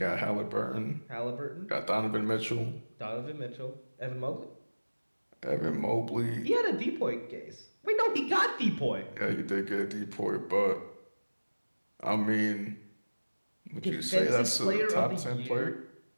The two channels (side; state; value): both; inverted; correlation -1.00